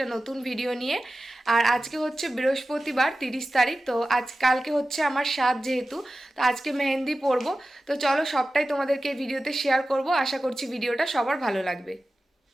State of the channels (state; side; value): normal; both; correlation 0.94